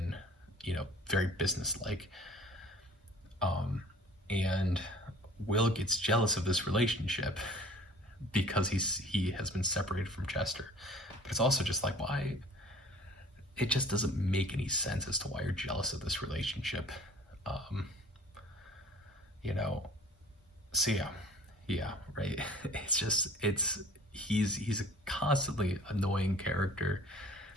very business-like. And Will gets jealous of this relationship because he has been separated from Chester. But it's also just like, why? It just doesn't make any sense as to why you're jealous of this relationship. So yeah, right. He's a constantly annoying character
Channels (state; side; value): normal; both; correlation 0.50